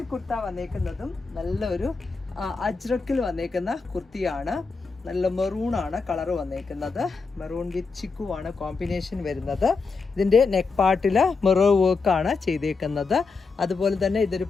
കുർത്ത വന്നേക്കുന്നതും നല്ലൊരു അജ്രക്കിൽ വന്നേക്കുന്ന കുർത്തിയാണ്. നല്ല മെറൂൺ ആണ് കളർ വന്നേക്കുന്നത്. മെറൂൺ വിത്ത് ചിക്കു ആണ് കോമ്പിനേഷൻ വരുന്നത്. ഇതിൻ്റെ നെക്ക് പാർട്ടിൽ മിറർ വർക്കാണ് ചെയ്തേക്കുന്നത്. അതുപോലെ തന്നെ ഇതൊരു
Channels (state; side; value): quieter; right; 4.5 dB